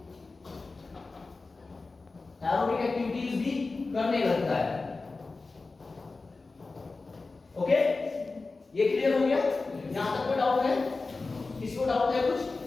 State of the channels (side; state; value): right; quieter; 3.7 dB